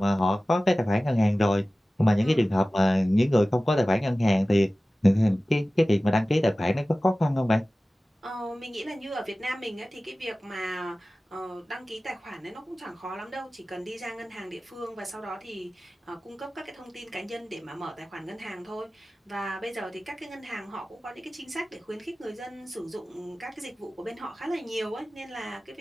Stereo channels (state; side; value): normal; both; correlation 0.97